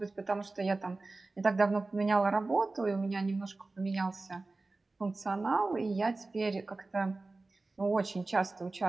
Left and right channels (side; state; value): left; quieter; 3.3 dB